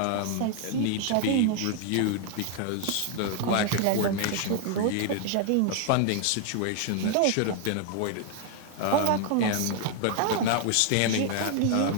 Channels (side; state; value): both; different; correlation 0.00